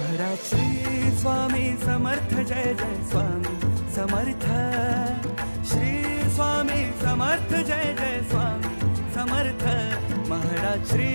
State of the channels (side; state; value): both; inverted; correlation -1.00